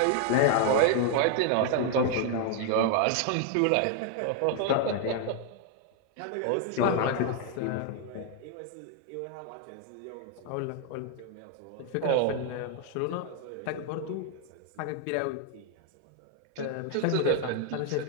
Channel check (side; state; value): both; different; correlation 0.00